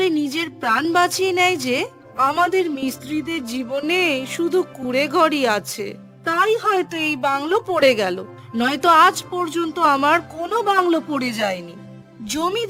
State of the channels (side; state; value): both; identical; correlation 1.00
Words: নিজের প্রাণ বাঁচিয়ে নেয় যে আমাদের মিস্ত্রিদের জীবনে শুধু কুড়ে ঘরই আছে, তাই হয়তো এই বাংলো পড়ে গেল, নয়তো আজ পর্যন্ত আমার কোনো বাংলো পড়ে যায়নি।